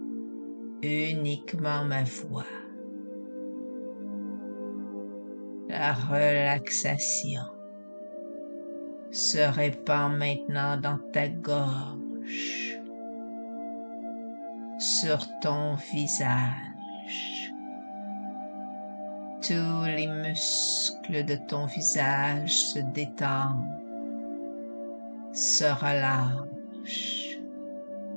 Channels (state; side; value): inverted; both; correlation -1.00